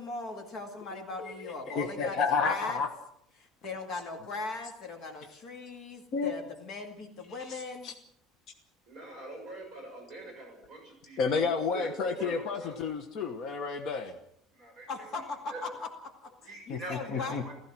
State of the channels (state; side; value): quieter; right; 4.2 dB